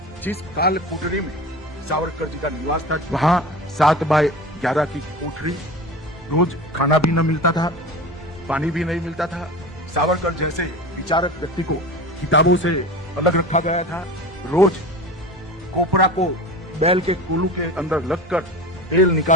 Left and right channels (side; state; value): both; normal; correlation 0.33